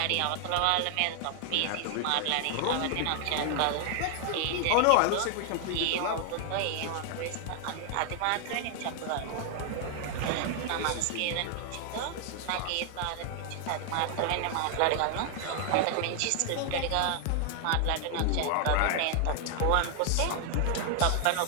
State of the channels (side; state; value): both; different; correlation 0.00